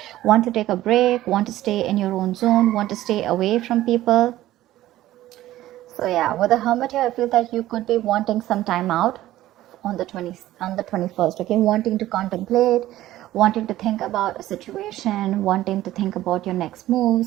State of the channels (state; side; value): quieter; left; 14.8 dB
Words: want to take a break, want to stay in your own zone, want to stay away from people. So yeah, with the Hermit here, I feel that you could be wanting some time out on the 21st, okay? Wanting to contemplate, wanting to think about a situation, wanting to think about your next